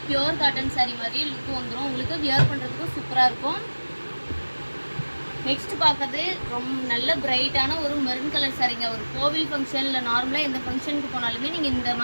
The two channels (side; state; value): both; inverted; correlation -1.00